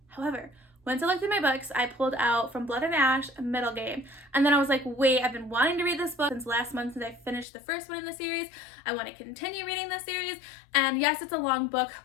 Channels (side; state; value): right; drops out; at 7.5 s